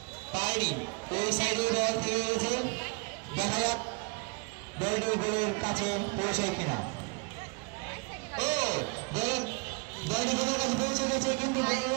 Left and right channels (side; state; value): left; quieter; 31.6 dB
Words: পায়নি। ওই সাইডে বল ফিরে গেছে। দেখা যাক বলটি গোলের কাছে পৌঁছায় কিনা। ও বলটি গোলের কাছে পৌঁছে গেছে কিন্তু